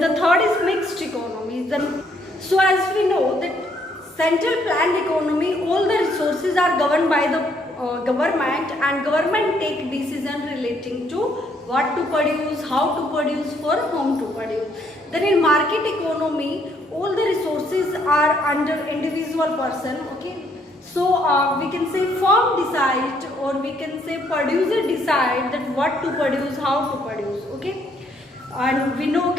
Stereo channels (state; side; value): normal; both; correlation 0.69